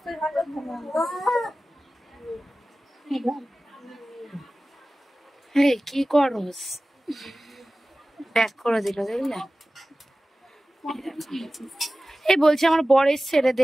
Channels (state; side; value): normal; both; correlation 0.96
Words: কি করস, ব্যাক করে দিল দেখলে। এই বলছি আমার বর এসছে রে,